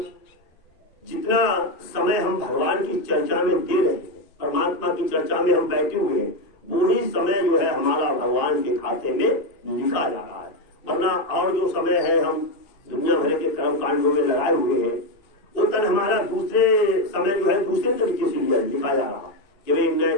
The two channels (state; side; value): late; right; 2.5 ms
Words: जितना समय हम भगवान की चर्चा में दे रहे हैं, परमात्मा की चर्चा में हम बैठे हुए हैं, वही समय जो है हमारा भगवान के खाते में लिखा जा रहा है। वरना और जो समय है हम दुनिया भर के कर्म कांडों में लगाए हुए हैं, वो तन हमारा दूसरे समय जो है दूसरे तरीके से लिखा जा रहा है कि भाई